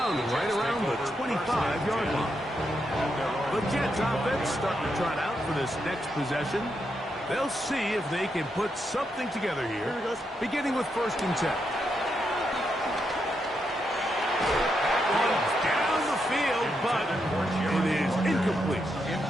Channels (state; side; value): normal; both; correlation 0.82